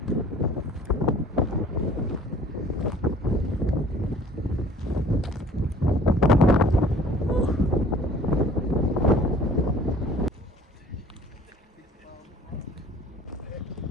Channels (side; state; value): both; normal; correlation 0.51